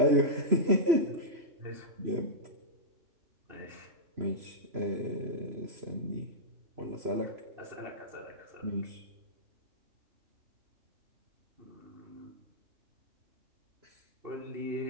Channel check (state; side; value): late; left; 3.0 ms